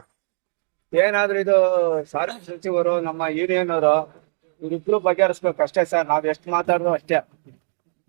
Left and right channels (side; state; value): left; silent; 64 dB below the other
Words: ಏನಾದ್ರೂ ಇದು ಸಾರಿಗೆ ಸಚಿವರು, ನಮ್ಮ ಯೂನಿಯನ್ ಅವರು ಇವ್ರಿಬ್ರು ಬಗೆಹರಿಸ್ಬೇಕು ಅಷ್ಟೇ ಸರ್. ನಾವ್ ಎಷ್ಟು ಮಾತಾಡೋದು ಅಷ್ಟೇ.